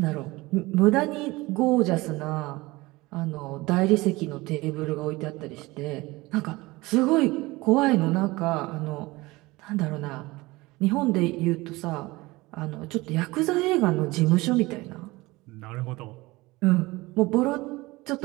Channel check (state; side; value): quieter; left; 21.3 dB